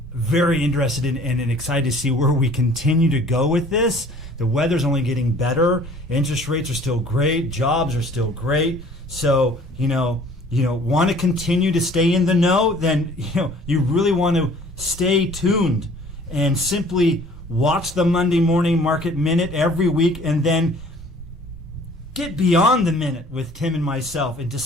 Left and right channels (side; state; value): both; normal; correlation 0.52